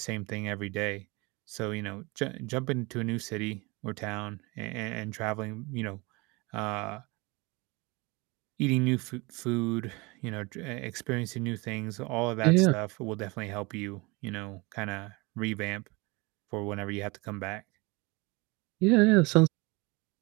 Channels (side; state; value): left; quieter; 25.9 dB